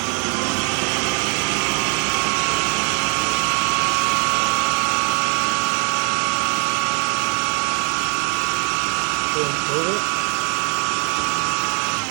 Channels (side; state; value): left; quieter; 37.0 dB